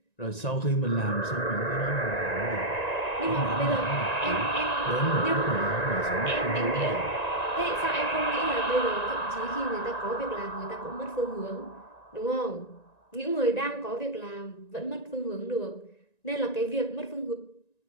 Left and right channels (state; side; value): late; right; 1.9 ms